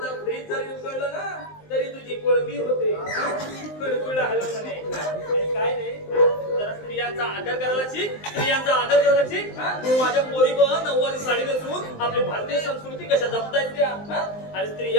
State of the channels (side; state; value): right; late; 19 ms